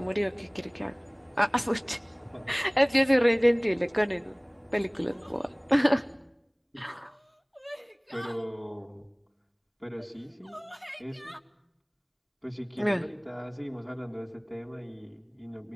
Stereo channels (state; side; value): identical; both; correlation 1.00